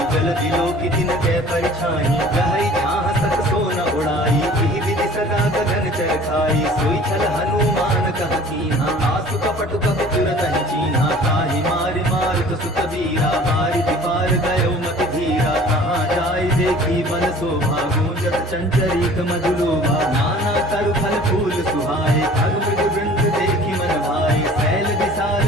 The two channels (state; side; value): normal; both; correlation 0.47